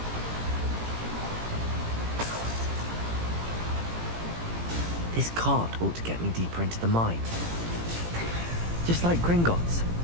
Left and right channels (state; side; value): late; left; 18 ms